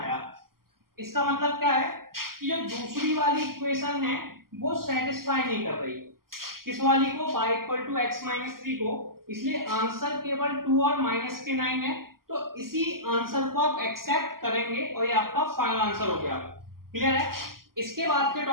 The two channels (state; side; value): late; left; 0.92 ms